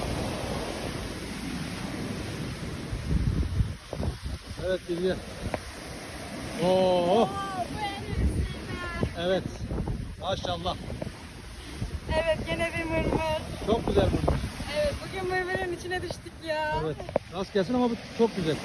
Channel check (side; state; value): both; identical; correlation 1.00